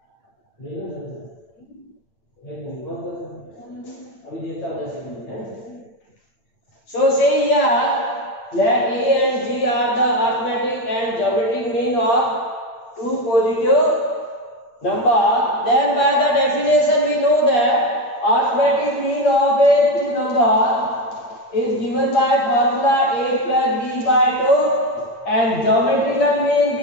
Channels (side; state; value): right; late; 8.8 ms